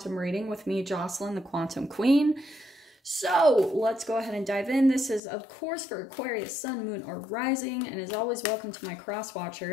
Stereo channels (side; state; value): right; drops out; at 5.2 s